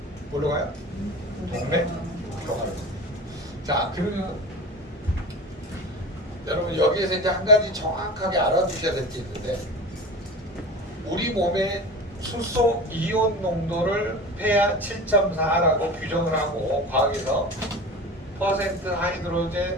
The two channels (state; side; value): normal; both; correlation 0.33